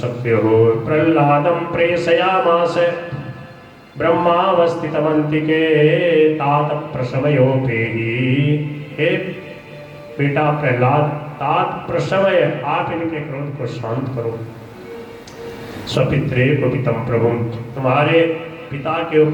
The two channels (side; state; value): both; identical; correlation 1.00